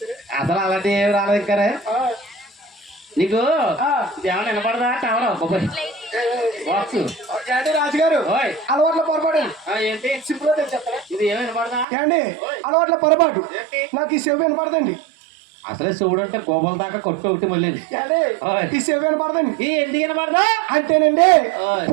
అసలు అలాంటి ఏమి రాలేదు. ఇంకా నీకు ఏమన్నా వినపడదా? టవర్ బాబోయ్ బాక్స్. రాజుగారు అలవాట్ల పొరపాటు ఏంటి? సింపుల్ చెప్తారా? ఇది ఏమి వినపడదా? ఏండి అలవాట్ల పొరపాటు నాకు ఈ చెవి వినపడదండి. అసలే శివుడు అంటే కోపం దాకా కొట్టు ఒకటి మళ్ళీ ఈ చెవి వినపడదండి. ఎందుకు వినపడదా అంటేనండి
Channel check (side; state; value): left; drops out; at 11.9 s